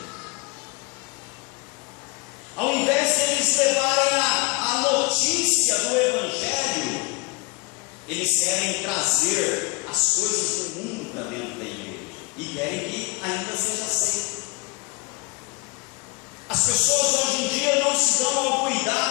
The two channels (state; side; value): quieter; right; 27.6 dB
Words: Ao invés de eles levarem a notícia do Evangelho, eles querem trazer as coisas do mundo para dentro da igreja e querem que ainda seja aceito. As pessoas hoje em dia não se dão ao